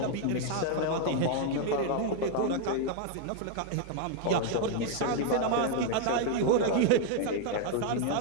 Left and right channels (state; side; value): different; both; correlation 0.00